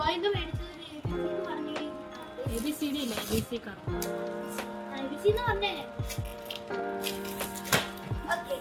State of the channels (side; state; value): both; identical; correlation 1.00